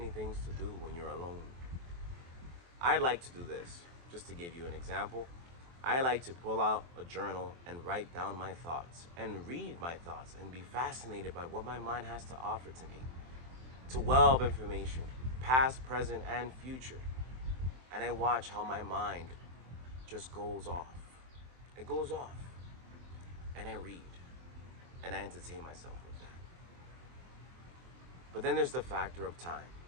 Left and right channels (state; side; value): late; left; 23 ms